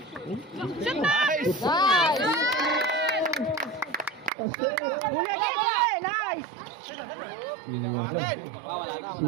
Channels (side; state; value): left; drops out; at 4.3 s